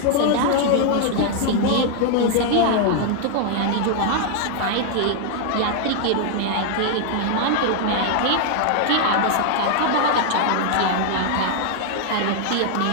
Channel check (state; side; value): different; both; correlation 0.00